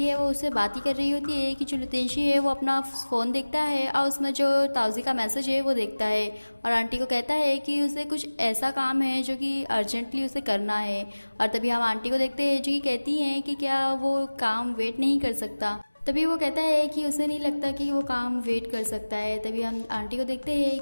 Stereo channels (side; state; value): both; inverted; correlation -1.00